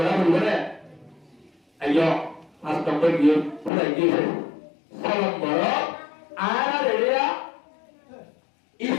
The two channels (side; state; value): right; drops out; at 3.7 s